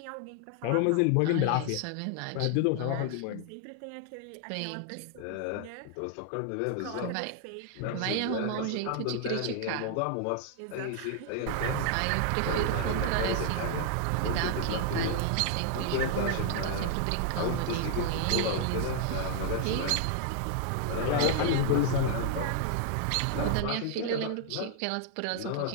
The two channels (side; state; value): both; different; correlation 0.00